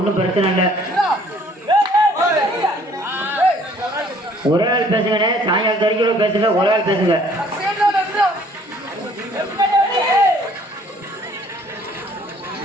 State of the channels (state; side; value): normal; both; correlation 0.58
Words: பிரச்சனை இல்லை. ஒரே ஆள் பேசுங்கண்ணே. சாயங்காலம் வரைக்கும் பேசுங்க. ஒரே ஆள் பேசுங்க.